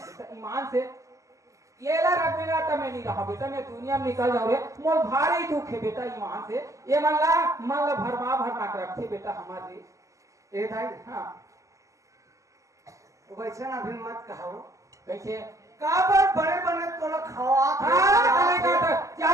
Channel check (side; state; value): left; late; 0.16 ms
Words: ईमान से ये ला रख मेरा तमे नहीं रहा बेटा मैं दुनिया में निकल जाऊँ रे मोल भारी दुख है बेटा यहाँ से ये मन ला भरमा के रखे बेटा हमारे ए भाई हाँ वैसे ना भी मत कहो कैसे काबर बड़े बने तो लोग खवा क्या